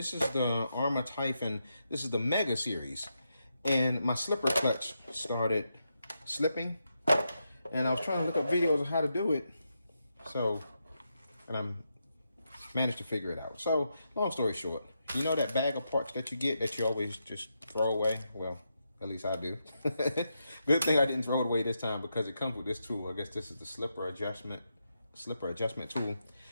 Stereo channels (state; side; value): inverted; both; correlation -0.84